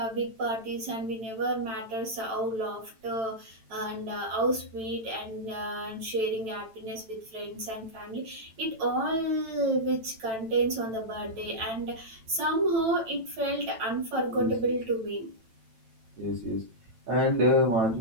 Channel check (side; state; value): left; late; 9.0 ms